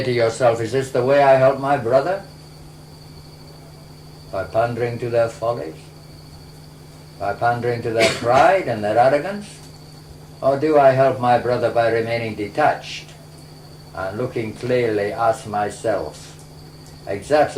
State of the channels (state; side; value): identical; both; correlation 1.00